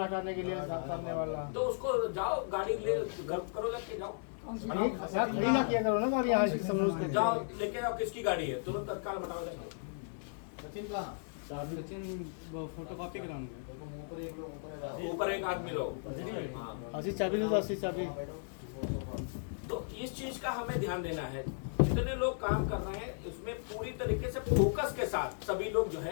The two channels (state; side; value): silent; right; digital silence